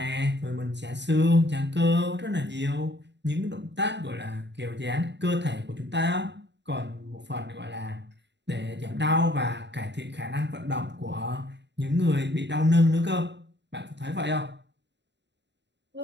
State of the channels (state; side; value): late; left; 0.51 ms